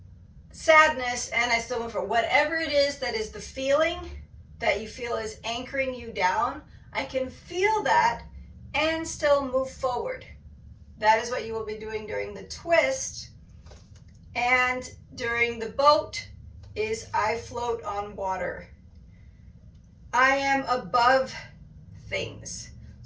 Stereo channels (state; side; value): identical; both; correlation 1.00